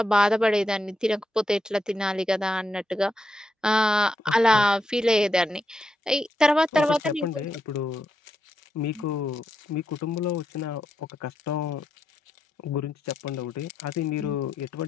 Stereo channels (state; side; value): normal; both; correlation 0.83